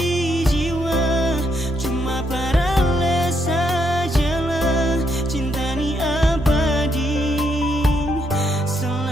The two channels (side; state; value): both; normal; correlation 0.77